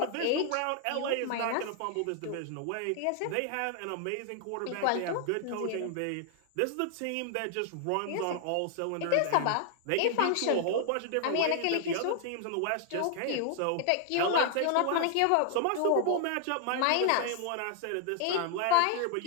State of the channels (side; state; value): both; different; correlation 0.00